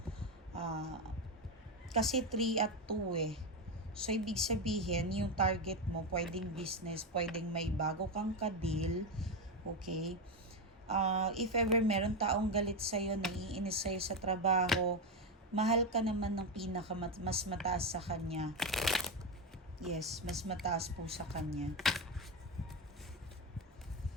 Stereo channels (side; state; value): both; normal; correlation 0.11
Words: kasi 3 at 2 eh. So, ibig sabihin, yung target mo, pwedeng business, pwedeng may bago kang ka-deal, okay? If ever meron taong galit sa'yo, naiinis sa'yo sa trabaho, mahal ka naman ng mas mataas sa kanya. Yes, mas mataas po sa kanya.